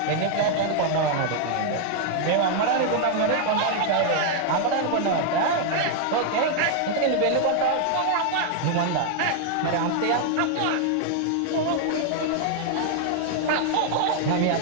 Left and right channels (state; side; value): different; both; correlation 0.00